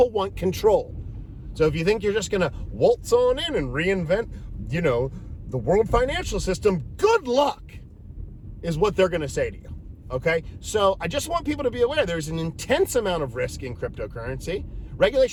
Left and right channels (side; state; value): both; identical; correlation 1.00